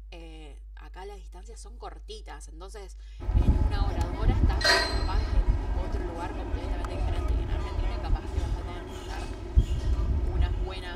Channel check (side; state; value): both; identical; correlation 1.00